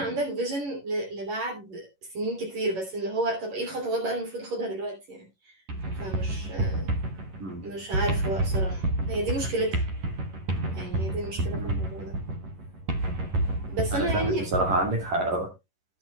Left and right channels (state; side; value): late; left; 11 ms